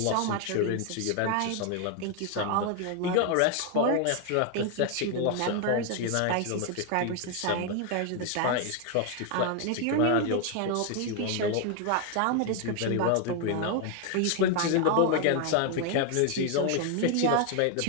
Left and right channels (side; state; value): both; different; correlation 0.01